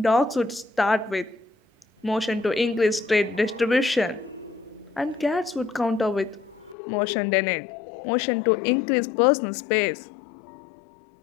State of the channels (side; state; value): right; drops out; at 6.8 s